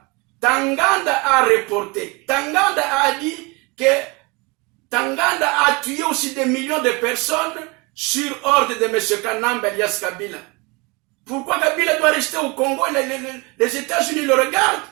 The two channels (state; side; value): quieter; left; 27.5 dB